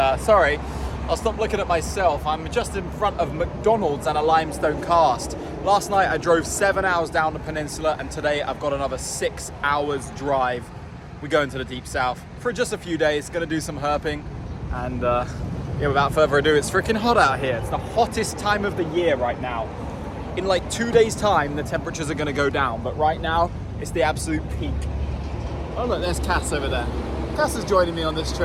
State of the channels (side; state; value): both; identical; correlation 1.00